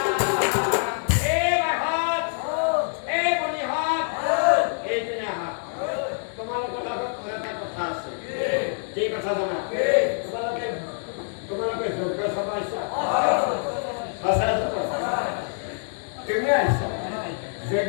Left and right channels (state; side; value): silent; right; 60 dB below the other